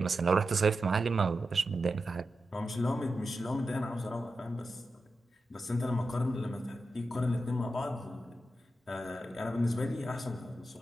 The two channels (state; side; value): normal; both; correlation 0.90